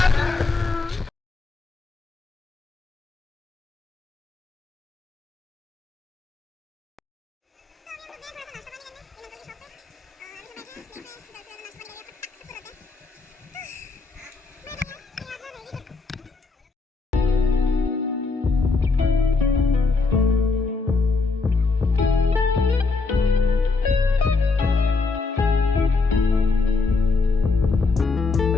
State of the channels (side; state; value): right; quieter; 4.0 dB